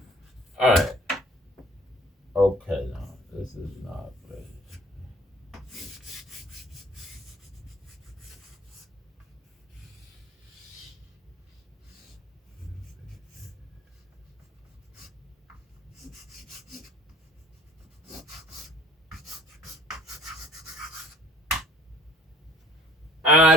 All right. Okay, now this is not ready. I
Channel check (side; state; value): both; normal; correlation 0.53